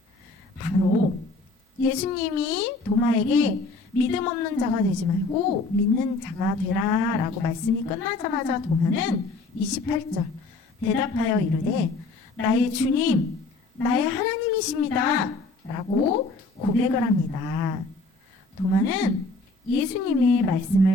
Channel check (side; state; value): right; quieter; 3.4 dB